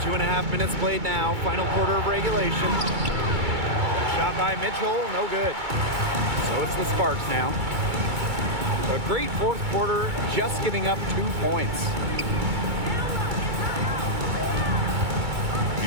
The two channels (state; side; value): late; left; 2.2 ms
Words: 2.5 minutes played now. Final quarter of regulation. Shot by Mitchell, no good. So it's the Sparks now. A great fourth quarter, just giving up 2 points.